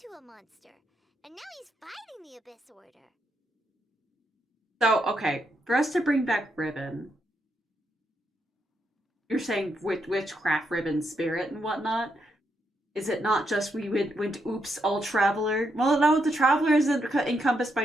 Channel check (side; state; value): both; normal; correlation 0.80